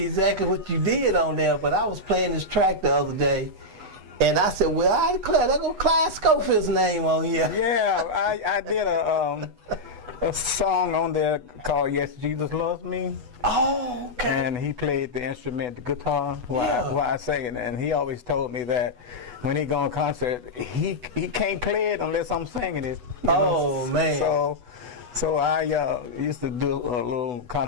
exactly what you did on there. But I was playing this track the other day, and I said, "Well, I declare there go Clyde Schofield's name on here." Yeah, I did a song on there called "Yes, Jesus Loves Me." Oh, okay. And he played the instrument, the guitar, while I sang. And he always told me that when he go on concert, he can't play it unless I'm singing it. Oh, man. So I used to do a little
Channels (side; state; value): left; late; 8.1 ms